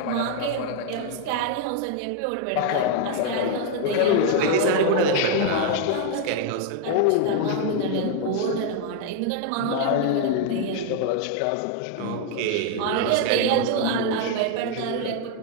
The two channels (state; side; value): different; both; correlation 0.00